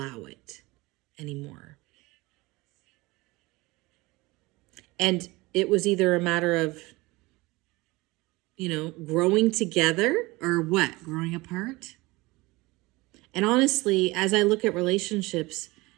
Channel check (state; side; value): quieter; left; 22.1 dB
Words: it anymore. And it was either a matter of, growing together or what? Growing apart? And honestly, as I look at relationships,